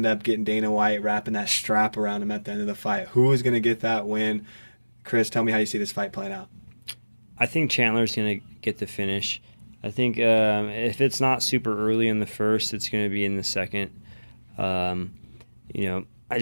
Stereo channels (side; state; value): both; inverted; correlation -1.00